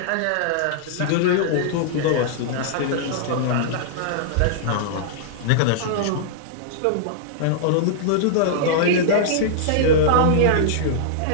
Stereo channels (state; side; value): different; both; correlation -0.02